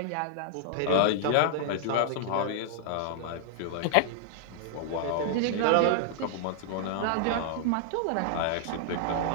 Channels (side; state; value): both; different; correlation -0.01